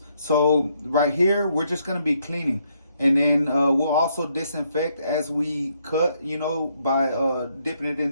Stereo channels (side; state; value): both; inverted; correlation -0.73